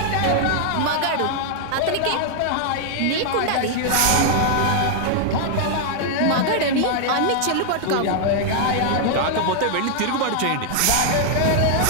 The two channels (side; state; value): both; different; correlation -0.01